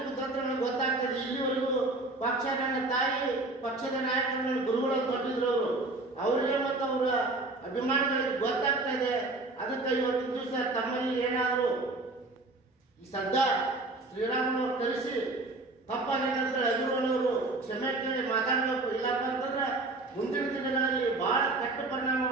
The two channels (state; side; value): quieter; left; 3.0 dB